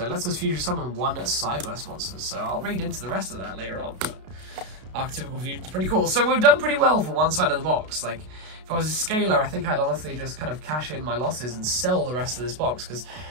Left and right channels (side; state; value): left; late; 32 ms